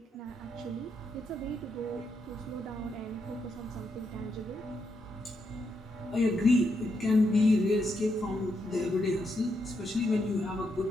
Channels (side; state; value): both; normal; correlation 0.81